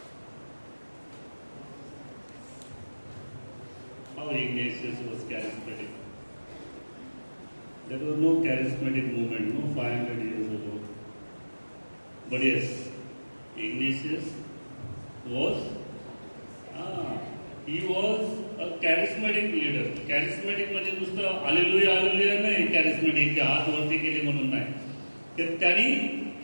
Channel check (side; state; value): both; inverted; correlation -1.00